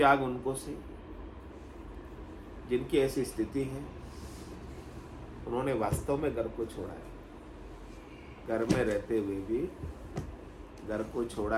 उनको से जिनकी ऐसी स्थिति है, उन्होंने वास्तव में घर को छोड़ा है। घर में रहते हुए भी घर को छोड़ा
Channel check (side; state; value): both; identical; correlation 1.00